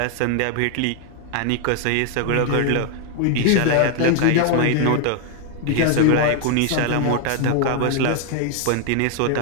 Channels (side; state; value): both; different; correlation 0.00